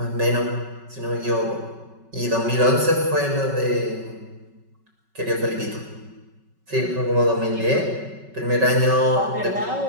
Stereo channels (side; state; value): left; late; 5.3 ms